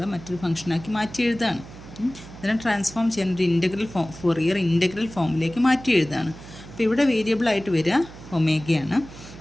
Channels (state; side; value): noise; right; hum, 16 dB below the sound